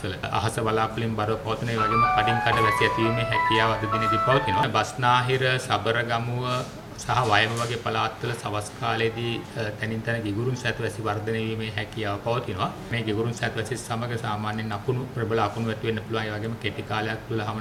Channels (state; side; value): identical; both; correlation 1.00